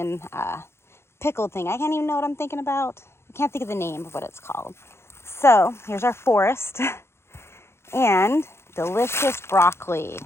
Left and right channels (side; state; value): right; late; 0.12 ms